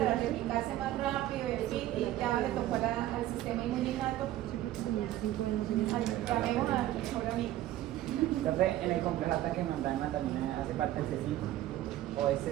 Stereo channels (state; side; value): quieter; left; 14.1 dB